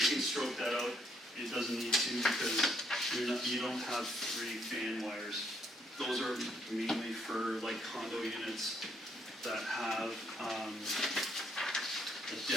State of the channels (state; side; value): normal; both; correlation 0.71